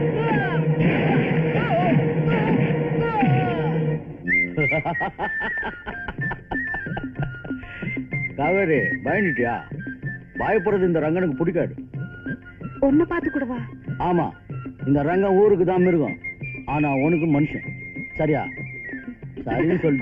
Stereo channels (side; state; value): both; identical; correlation 1.00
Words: காவேரி பயந்துட்டியா? பயப்படுறது இந்த ரங்கனுக்கு பிடிக்காது. ஒன்ன பார்த்து கூடவா? ஆமா, இந்த ரங்கம் ஊருக்கு தான் மிருகம், ஆனா உனக்கு மனுஷன். சரியா? சரின்னு